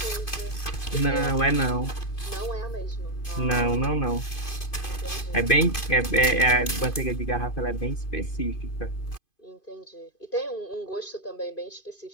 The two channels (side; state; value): right; late; 2.5 ms